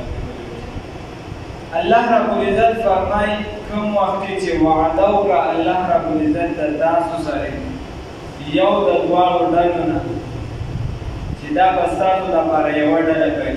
الله رب العزت فرمای کوم وخت چې وعده وکړه الله رب العزت د تاسو سره یو د دواړو ډلو نه چې دا به ستاسو لپاره یوه ډله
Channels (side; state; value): both; identical; correlation 1.00